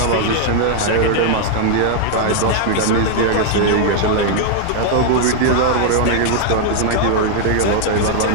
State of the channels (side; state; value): both; different; correlation 0.00